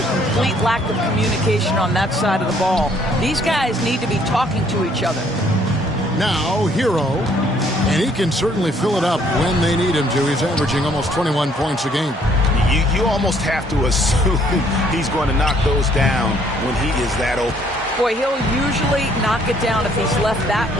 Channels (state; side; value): normal; both; correlation 0.64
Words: complete lack of communication on that side of the ball. These guys need to be talking to each other. Now, Hero, and he can certainly fill it up when they need him to. He's averaging almost 21 points a game. You almost have to assume he's going to knock those down when he is that open. Boy, he'll usually knock it down if he's left that